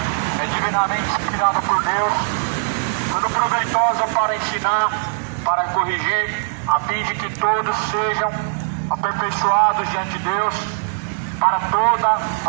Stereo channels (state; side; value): silent; left; 66 dB below the other